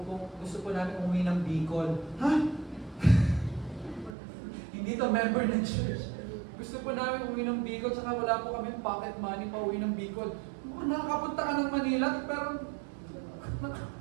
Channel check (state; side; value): drops out; left; at 4.2 s